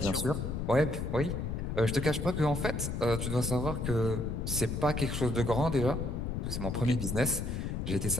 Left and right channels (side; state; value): left; noise; rumble, 3 dB below the sound